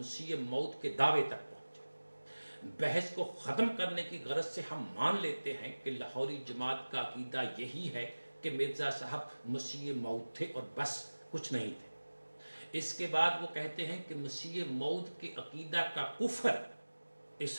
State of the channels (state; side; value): inverted; both; correlation -1.00